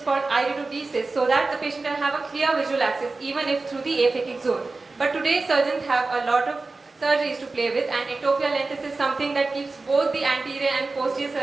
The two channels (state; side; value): quieter; left; 3.6 dB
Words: called iridodesis, so that the patient can have a clear visual access, even if through the aphakic zone. But today surgeons have a lot of surgeries to play with, and ectopia lentis is something that keeps both the anterior and posterior